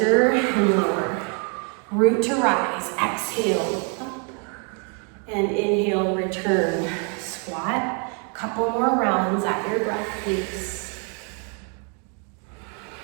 and lower. Root to rise, exhale, up. And inhale, return, squat. Couple more rounds at your breath pace.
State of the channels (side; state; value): left; quieter; 39.0 dB